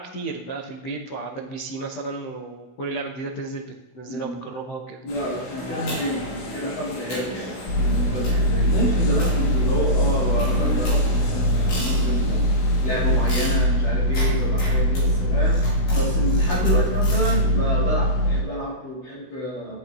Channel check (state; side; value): late; right; 16 ms